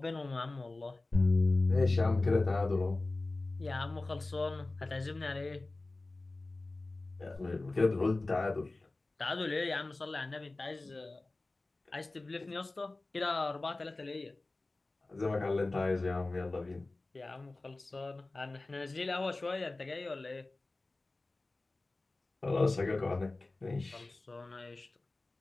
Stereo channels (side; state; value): right; quieter; 3.1 dB